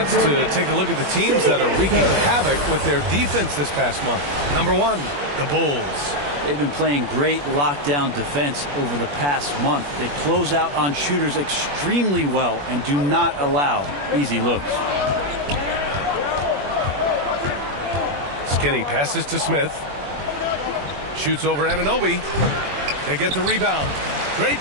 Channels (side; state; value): left; late; 21 ms